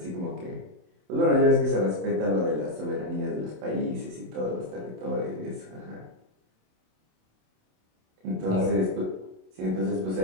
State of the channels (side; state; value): left; late; 27 ms